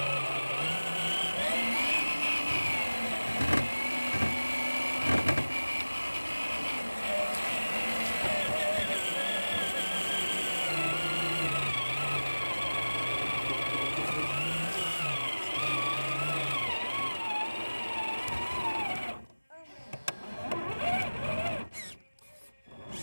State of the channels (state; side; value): inverted; both; correlation -1.00